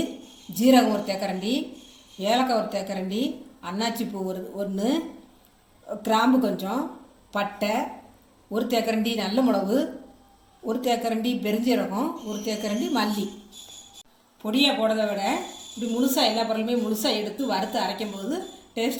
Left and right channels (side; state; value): both; identical; correlation 1.00